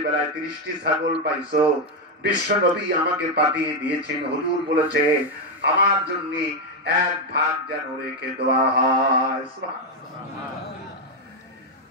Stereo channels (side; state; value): both; normal; correlation 0.04